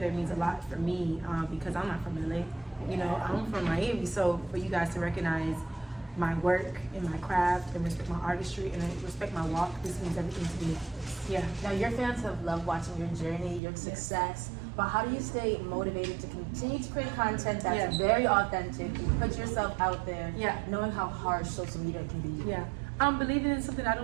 means a lot for me because I'm not from LA. You know, I'm from Miami. So for you guys to recognize my work and my craft and respect my artistry and respect my walk, this means everything to me. Yeah. Now, your fans have loved watching your journey, your success, but how do you stay motivated to continue to create content that's Yes. very authentic, put yourself out there, Yeah. knowing how harsh social media can be? Yeah, I'm believing in something I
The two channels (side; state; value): left; drops out; at 13.6 s